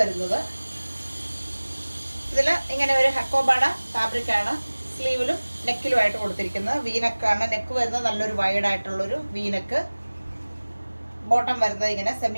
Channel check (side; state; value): both; inverted; correlation -1.00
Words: വരുന്നത്. ഇതിൽ ഇങ്ങനെ ഒരു ഹക്കോബാഡ ഫാബ്രിക് ആണ് സ്ലീവിലും നെക്കിലുമായിട്ട് കൊടുത്തിരിക്കുന്നത്. വീനക്കാണ് നെക്ക് വരുന്നത്, നല്ലൊരു വൈഡ് ആയിട്ടുള്ളൊരു വീനക്ക്. ബോട്ടം വരുന്നത് ഇങ്ങനെ